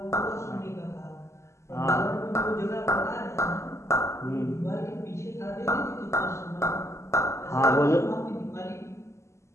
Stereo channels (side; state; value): right; late; 0.13 ms